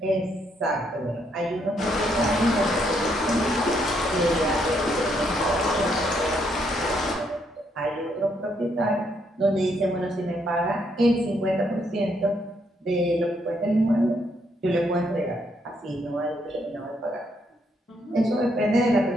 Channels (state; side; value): normal; both; correlation 0.73